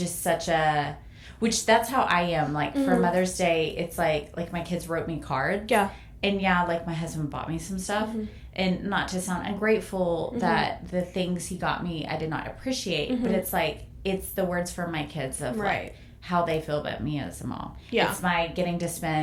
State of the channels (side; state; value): both; identical; correlation 1.00